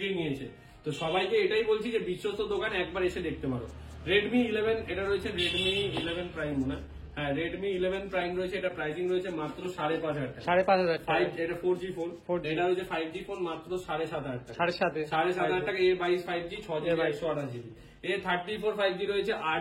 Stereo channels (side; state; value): both; identical; correlation 1.00